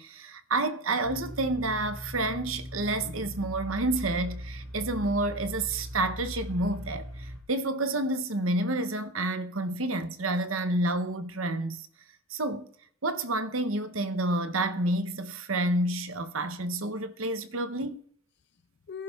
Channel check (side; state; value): both; normal; correlation 0.27